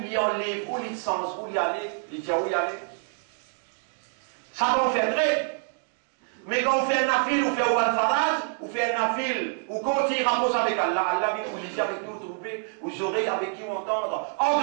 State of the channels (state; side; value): silent; left; 59 dB below the other